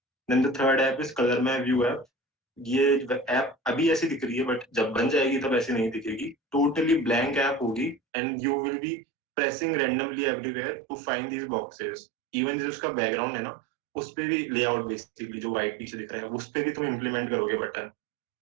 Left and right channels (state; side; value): drops out; left; at 8.0 s